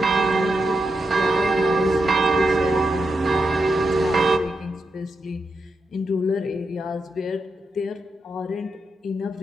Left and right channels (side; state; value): both; normal; correlation 0.86